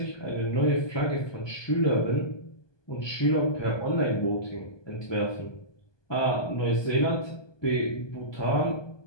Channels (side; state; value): right; late; 1.2 ms